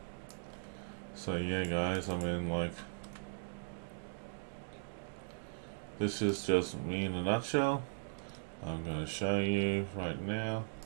So yeah guys, I mean, like, this is just me in a nutshell. I'm going to show you right now.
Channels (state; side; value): silent; left; digital silence